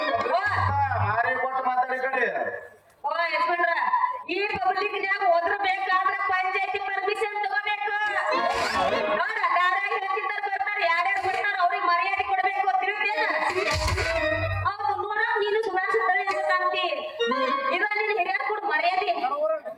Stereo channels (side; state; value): both; identical; correlation 1.00